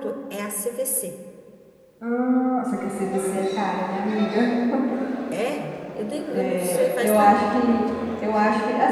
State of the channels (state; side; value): identical; both; correlation 1.00